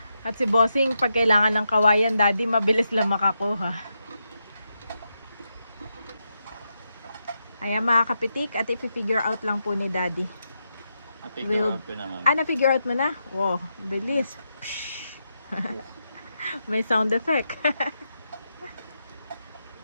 At si Bossing, pag kailangan ng kawayan, Daddy, mabilis lang makakuha. Ayan, mga kapitik, at i-figure out lang po ni Daddy. Figure out ko naman. Na-figure out mo na? Wow, bilis. May sound effect.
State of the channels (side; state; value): both; inverted; correlation -0.85